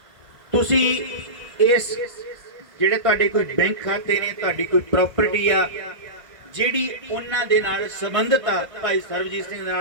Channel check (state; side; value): late; left; 1.8 ms